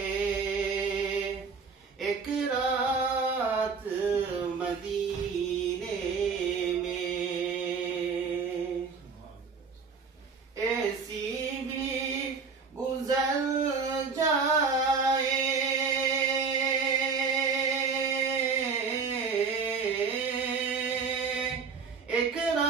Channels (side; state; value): left; quieter; 5.2 dB